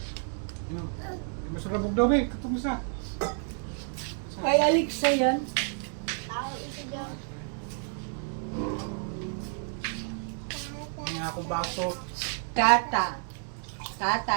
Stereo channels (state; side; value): silent; left; 58 dB below the other